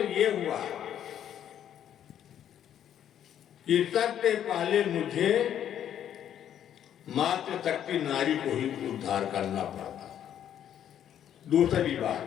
ये हुआ कि सबसे पहले मुझे मातृशक्ति नारी को ही उद्धार करना पड़ा। दूसरी बात,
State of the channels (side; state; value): right; quieter; 10.1 dB